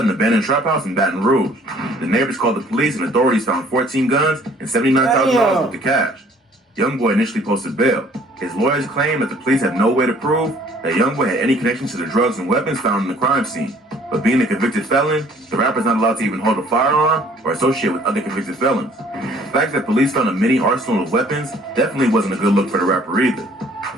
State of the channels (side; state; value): both; normal; correlation 0.57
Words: an abandoned trap house in Baton Rouge. The neighbors called the police and authorities found 14 guns and $79,000 worth of cash. Youngboy initially posted bail. His lawyers claim that the police have no way to prove that Youngboy had any connection to the drugs and weapons found in the crime scene. But being a convicted felon, the rapper's not allowed to even hold a firearm or associate with other convicted felons. The fact that police found a mini arsenal of weapons definitely wasn't a good look for the rapper either.